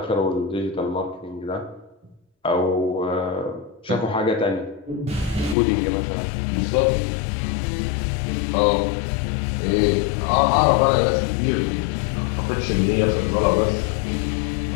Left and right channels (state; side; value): drops out; right; at 5.6 s